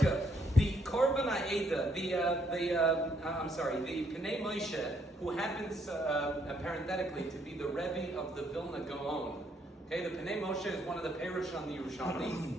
The Korban Ha'eda, the Pnei Moshe, who happens parenthetically to be the Rebbe of the Vilna Gaon. Okay, the Pnei Moshe is one of the Perush on the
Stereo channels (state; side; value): normal; both; correlation 0.71